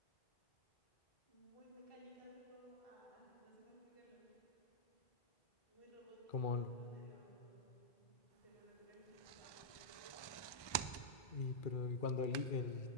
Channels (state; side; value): late; right; 1.2 ms